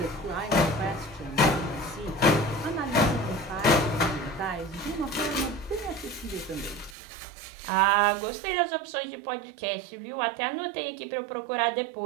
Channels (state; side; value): drops out; left; at 7.0 s